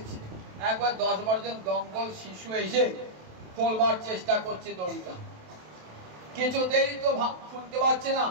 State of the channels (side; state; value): left; late; 27 ms